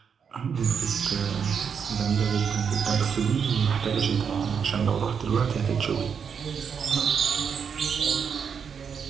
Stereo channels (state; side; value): quieter; left; 6.8 dB